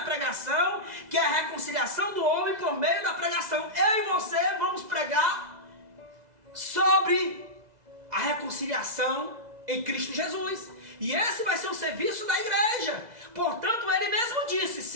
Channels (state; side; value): late; left; 2.0 ms